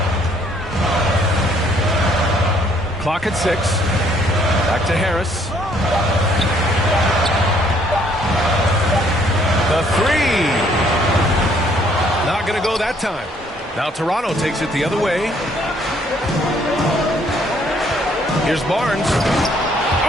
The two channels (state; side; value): normal; both; correlation 0.64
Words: Clock at 6. Back to Harris. The 3. Not going to go that time. Now Toronto takes it the other way. Here's Barnes.